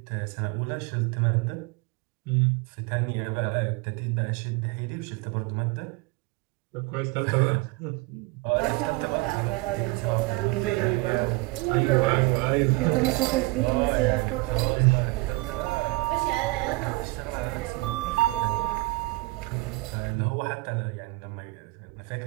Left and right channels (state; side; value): quieter; left; 23.6 dB